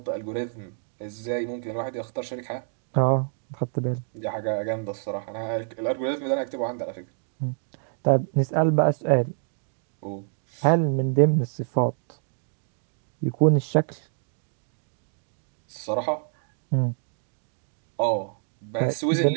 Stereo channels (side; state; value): left; silent; digital silence